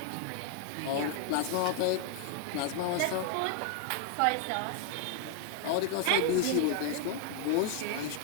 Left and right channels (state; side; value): different; both; correlation 0.00